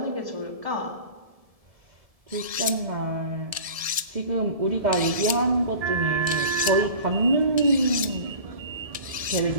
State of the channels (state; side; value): late; left; 1.7 ms